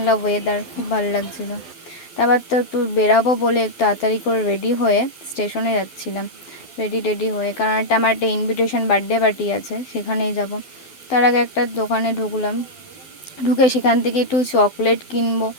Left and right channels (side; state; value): right; late; 12 ms